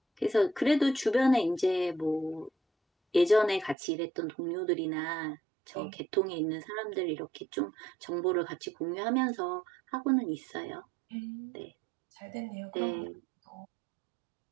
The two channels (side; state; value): left; drops out; at 3.8 s